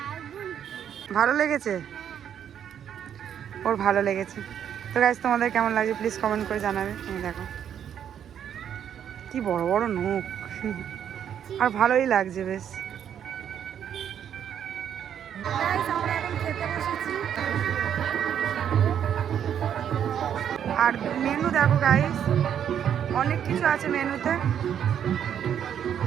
ভালো লেগেছে, ওর ভালো লেগেছে। তো গাইস তোমাদের কেমন লাগছে প্লিজ কমেন্ট করে জানাবে। এই দেখো কি বড় বড় নখ, আর ভালোই লাগছে বেশ। আর মেনু দেখো গাইস, অনেক কিছু আছে মেনুতে।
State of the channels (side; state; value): left; quieter; 9.1 dB